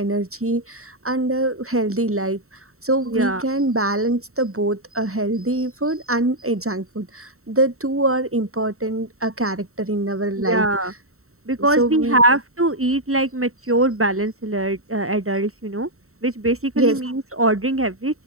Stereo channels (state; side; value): late; left; 0.63 ms